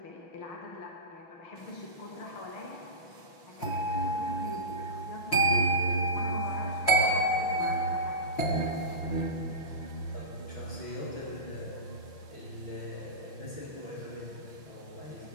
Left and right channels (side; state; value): right; late; 6.2 ms